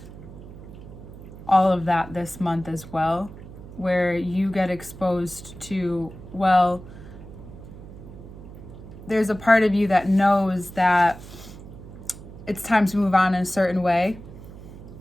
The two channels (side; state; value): right; noise; hum, 15 dB below the sound